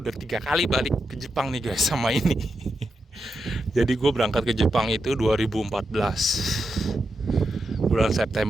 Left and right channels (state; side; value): normal; both; correlation 0.86